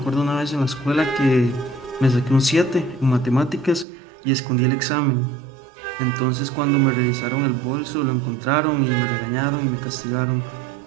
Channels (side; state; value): left; drops out; at 3.9 s